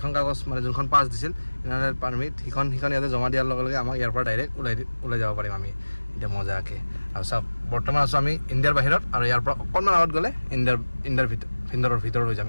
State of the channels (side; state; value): both; inverted; correlation -1.00